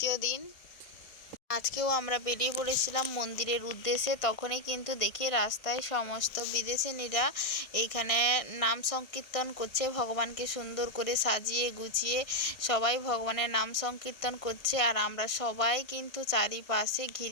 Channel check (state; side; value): late; right; 1.6 ms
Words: দিন। আজকেও আমরা বেরিয়ে পড়েছিলাম মন্দিরের উদ্দেশ্যে। তখনই কিন্তু দেখি রাস্তায় সমস্ত বিদেশিনীরা এইখানে নাম সংকীর্তন করছে, ভগবানকে সুন্দর করে সাজিয়ে গুছিয়ে সবাই ভগবানের নাম সংকীর্তন করছে। আর আমরা সবাই কিন্তু চারিপাশে